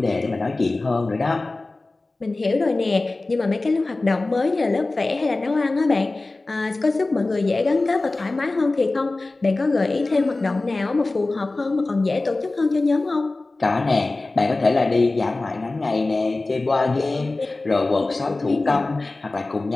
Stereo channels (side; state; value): right; quieter; 3.2 dB